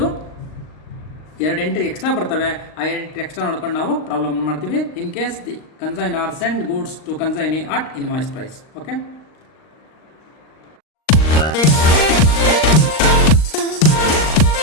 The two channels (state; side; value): late; right; 39 ms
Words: 2 entry extra ಬರ್ತವೆ. ಆ entry extra ನೋಡ್ಕೊಂಡು ನಾವು problem ಮಾಡ್ತೀವಿ. In case the consignor send goods to consignee at invoice price. Okay.